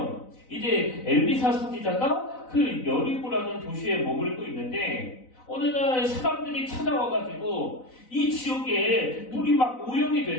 이제 엘리사 선지자가 그 여리고라는 도시에 머물고 있는데 어느 날 사람들이 찾아와가지고 이 지역에 물이 막 오염이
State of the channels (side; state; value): right; late; 4.0 ms